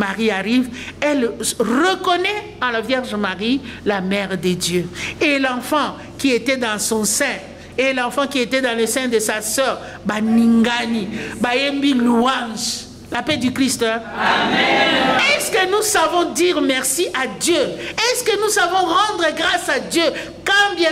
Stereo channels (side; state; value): both; identical; correlation 1.00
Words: arrive, elle reconnaît en la Vierge Marie la mère de Dieu. Et l'enfant qui était dans son sein, et l'enfant qui était dans le sein de sa sœur, Baningani, Bayembi louange, la paix du Christ. Hein? Amen. Est-ce que nous savons dire merci à Dieu? Est-ce que nous savons rendre grâce à Dieu quand